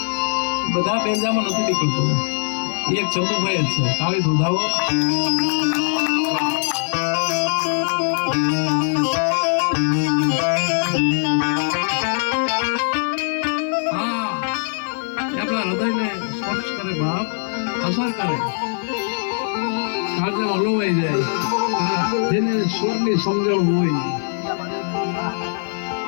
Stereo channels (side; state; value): right; silent; digital silence